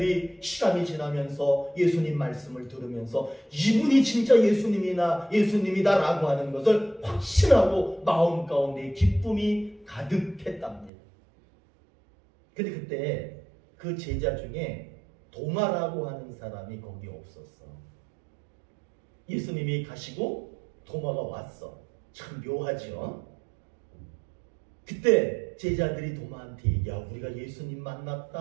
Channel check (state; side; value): drops out; left; at 10.9 s